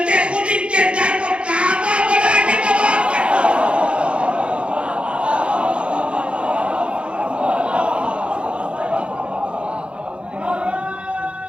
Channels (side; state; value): left; late; 0.058 ms